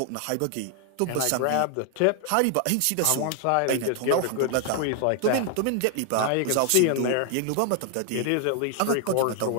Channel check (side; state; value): both; different; correlation 0.00